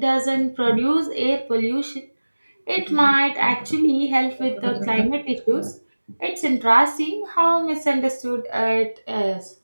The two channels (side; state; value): both; inverted; correlation -1.00